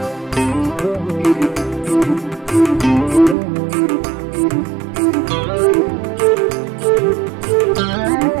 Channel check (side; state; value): left; drops out; at 3.4 s